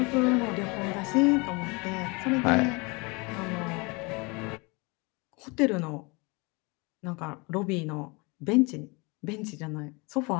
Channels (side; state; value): right; quieter; 28.1 dB